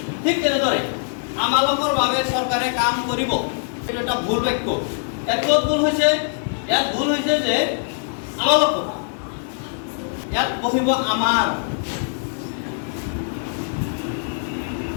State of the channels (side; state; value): right; silent; digital silence